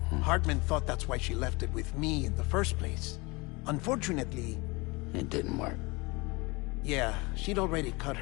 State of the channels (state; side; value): quieter; right; 25.6 dB